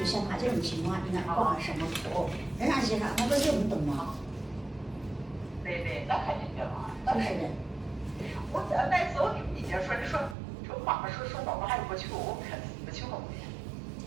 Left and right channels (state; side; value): drops out; left; at 10.4 s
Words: 像他这种情况，应该挂什么口？人家先生他不就你懂吗？对对，那肯定的嘛，那肯定。我那时候你就说你说妈妈说宝宝还不去，我不去后面。